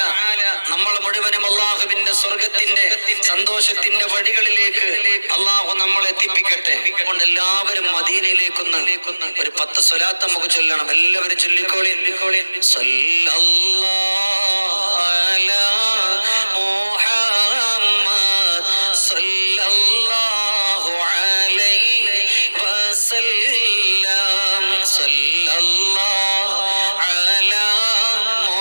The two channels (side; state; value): both; inverted; correlation -1.00